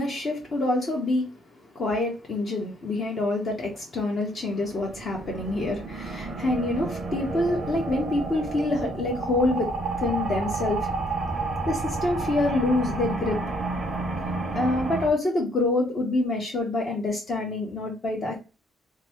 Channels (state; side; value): normal; both; correlation 0.66